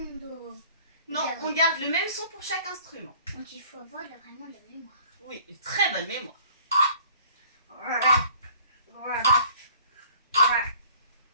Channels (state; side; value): inverted; both; correlation -0.54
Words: Non, on garde le même son pour chaque instrument. Donc il faut avoir vraiment de la mémoire. Oui, une très bonne mémoire.